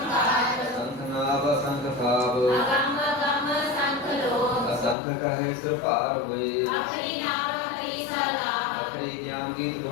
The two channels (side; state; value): right; drops out; at 5.0 s